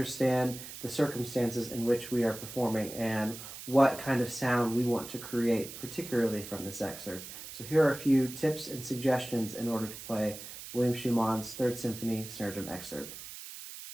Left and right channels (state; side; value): noise; right; hiss, 12 dB below the sound